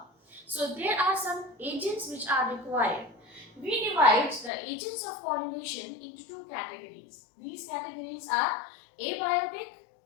So there are some agents which are required. We divide the agents of pollination into two categories. These categories are abiotic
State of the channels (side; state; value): right; drops out; at 4.5 s